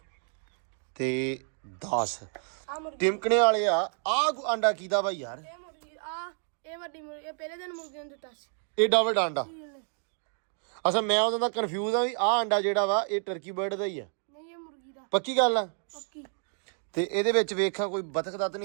ਤੇ 10 ਆ ਮੁਰਗੀ ਟਿਮਕਣੇ ਵਾਲੇ ਆ। ਆਂਡਾ ਕੀਦਾ ਵਾ ਯਾਰ? ਇਹ ਮੁਰਗੀ ਇਹ ਵੱਡੀ ਮੁਰਗੀ ਇਹ ਪਹਿਲੇ ਦਿਨ ਮੁਰਗੀ ਨੂੰ ਦਿੱਤਾ ਸੀ। ਏਡਾ ਵੱਡਾ ਆਂਡਾ? ਸੀਲ ਨੇ। ਅਸਾਂ ਮੈਂ ਉਦੋਂ ਦਾ ਕਨਫਿਊਜ਼ ਆ ਵੀ ਆਹ ਅੰਡਾ ਜਿਹੜਾ ਵਾ ਇਹ ਟਰਕੀ ਬਰਡ ਦਾ ਹੀ ਆ। ਨਹੀਂ ਇਹ ਮੁਰਗੀ ਦਾ। ਪੱਕੀ ਗੱਲ ਆ? ਪੱਕੀ। ਤੇ ਇਹਦੇ ਵਿੱਚ ਵੇਖਾਂ ਕੋਈ ਬਤਖ ਦਾ ਤਾਂ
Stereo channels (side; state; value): left; silent; 55 dB below the other